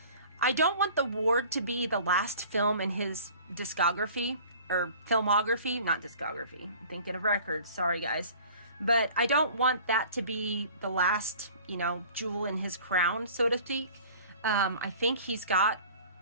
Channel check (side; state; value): both; inverted; correlation -0.47